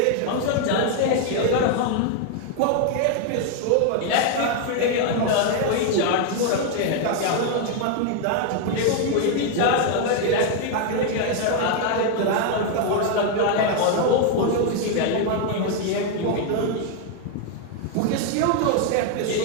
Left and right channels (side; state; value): both; different; correlation 0.01